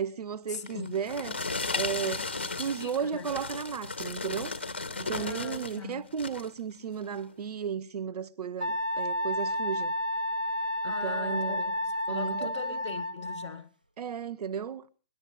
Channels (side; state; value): both; inverted; correlation -0.43